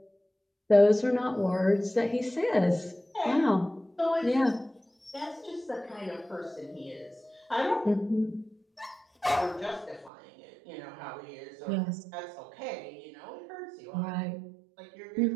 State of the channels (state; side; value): drops out; left; at 10.1 s